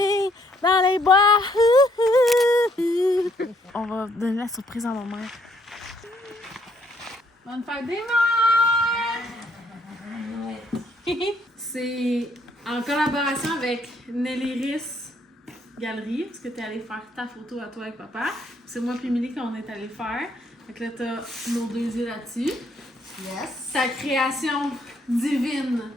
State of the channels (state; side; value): normal; both; correlation 0.69